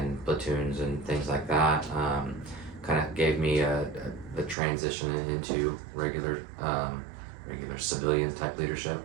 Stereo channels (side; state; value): left; drops out; at 4.5 s